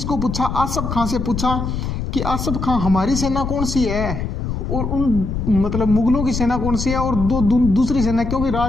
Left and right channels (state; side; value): noise; left; rumble, 4 dB below the sound